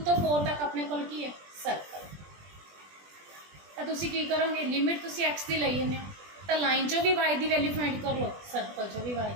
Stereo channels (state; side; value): late; left; 20 ms